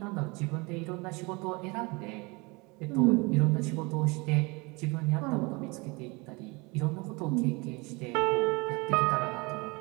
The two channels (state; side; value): quieter; left; 26.9 dB